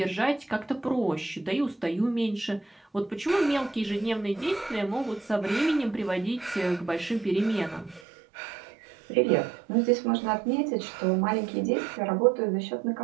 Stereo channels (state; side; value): drops out; left; at 8.0 s